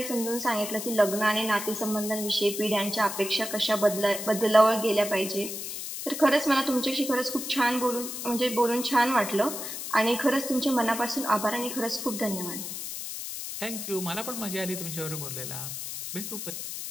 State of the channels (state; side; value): noise; left; hiss, 6 dB below the sound